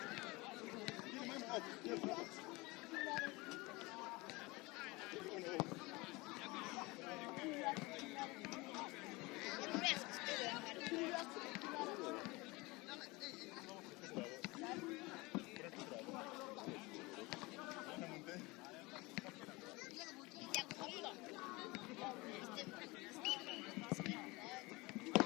Get the man off. Yes, off.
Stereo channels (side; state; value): right; quieter; 23.6 dB